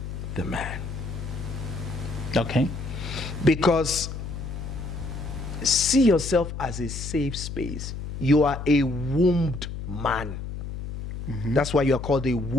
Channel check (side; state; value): left; noise; hum, 7 dB below the sound